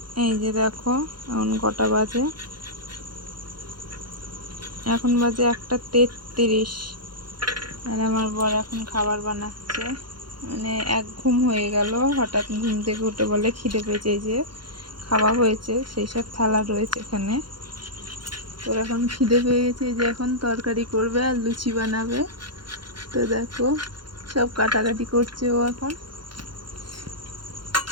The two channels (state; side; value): late; left; 0.72 ms